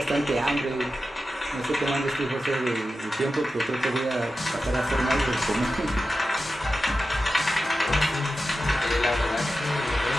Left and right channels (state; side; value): normal; both; correlation 0.92